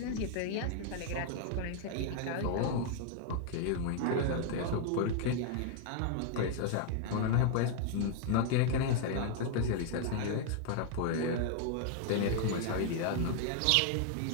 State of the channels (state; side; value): different; both; correlation 0.00